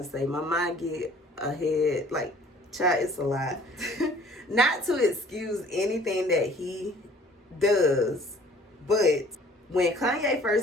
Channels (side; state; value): both; normal; correlation 0.53